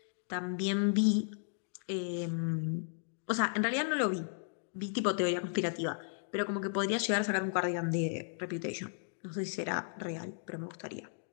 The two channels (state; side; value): silent; right; digital silence